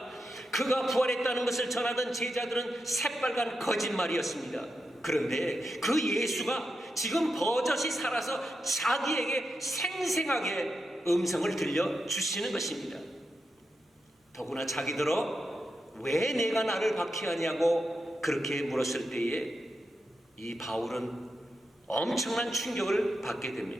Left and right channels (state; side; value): normal; both; correlation 0.87